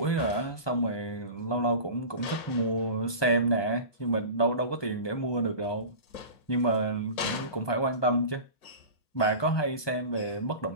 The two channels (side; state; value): right; late; 1.2 ms